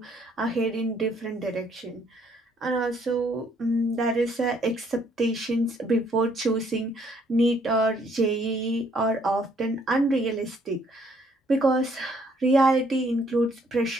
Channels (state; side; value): normal; both; correlation 0.66